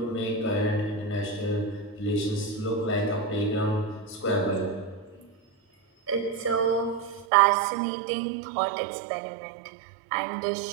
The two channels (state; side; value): drops out; left; at 7.2 s